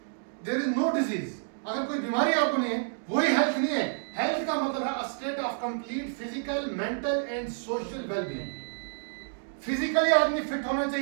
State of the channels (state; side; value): silent; left; digital silence